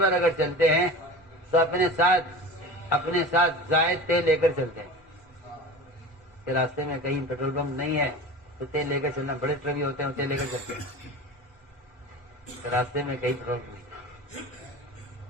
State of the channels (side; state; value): both; normal; correlation 0.34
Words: پر اگر چلتے ہیں تو اپنے ساتھ زائد تیل لے کر چلتے ہیں کہ راستے میں کہیں پیٹرول پمپ نہیں ہے تو تیل لے کر چلنا. بڑے ٹرک بھی ہوتے ہیں تیل لے کر چلتے ہیں کہ راستے میں کہیں پیٹرول پمپ نہیں.